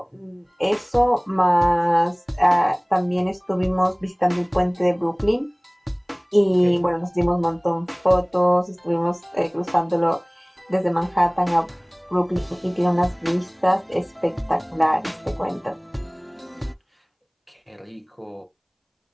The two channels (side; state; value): both; identical; correlation 1.00